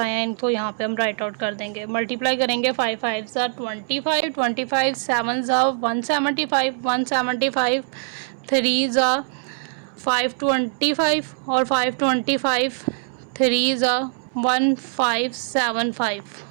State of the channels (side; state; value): left; silent; 64 dB below the other